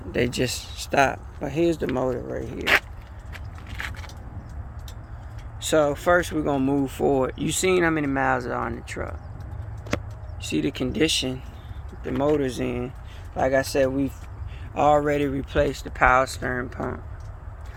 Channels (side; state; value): both; identical; correlation 1.00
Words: they just stopped. But here's the motor right here. So first we're gonna move forward. You seen how many miles are on the truck. See the condition the motor's in. Like I said, we've already replaced the power steering pump.